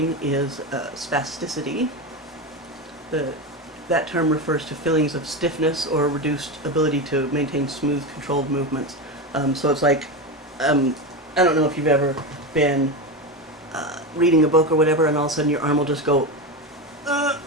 is spasticity. That term refers to feelings of stiffness or reduced ability to maintain smooth, controlled movements. So it's like, I don't know if you've ever been reading a book or whatever, and all of a sudden your arm will just go,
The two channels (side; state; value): both; normal; correlation 0.18